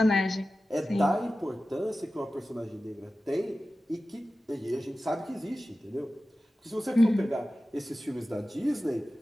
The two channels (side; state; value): both; normal; correlation 0.95